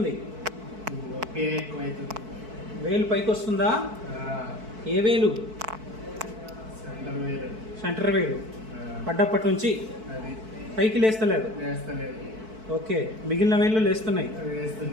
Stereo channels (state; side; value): late; left; 4.6 ms